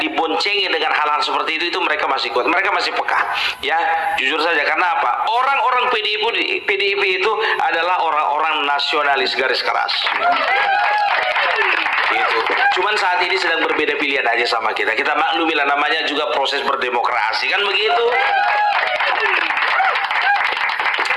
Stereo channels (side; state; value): both; identical; correlation 1.00